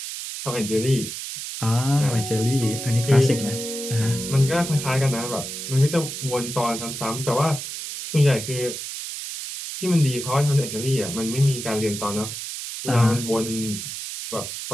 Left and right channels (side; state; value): right; noise; hiss, 7 dB below the sound